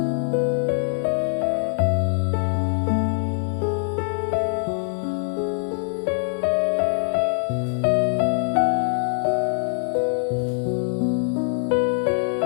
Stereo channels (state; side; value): silent; right; digital silence